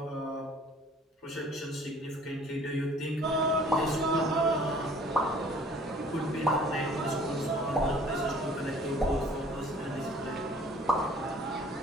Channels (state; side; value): normal; both; correlation 0.54